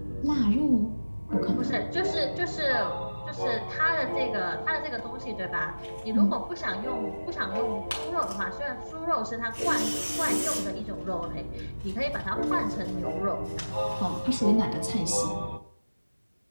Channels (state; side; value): inverted; both; correlation -1.00